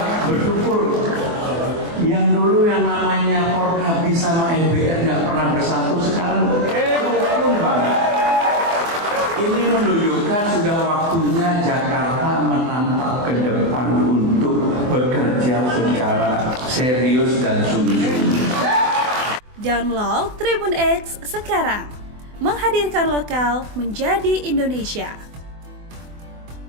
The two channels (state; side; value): late; left; 24 ms